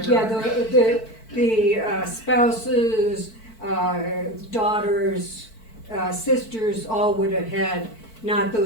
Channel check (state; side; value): late; right; 4.5 ms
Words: Yeah, the spouses, daughters, sisters all would have had not